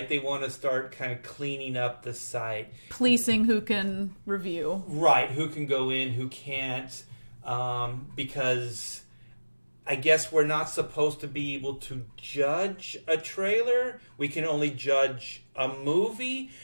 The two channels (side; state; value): both; inverted; correlation -1.00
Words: They want to start kind of cleaning up the site. Policing who can review. Right, who can go in, who can't. Because I guess we're not supposed to be able to judge a trailer. We can only judge a movie.